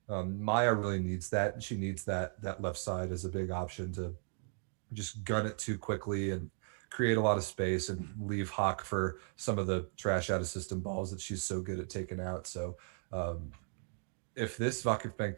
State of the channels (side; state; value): left; silent; 53 dB below the other